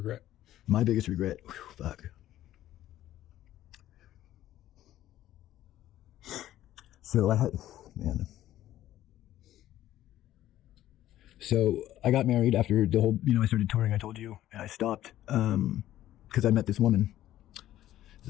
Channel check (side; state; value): right; quieter; 13.4 dB